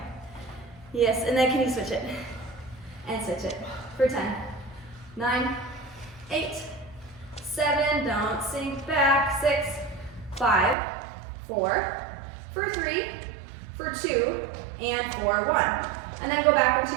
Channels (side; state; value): left; drops out; at 10.8 s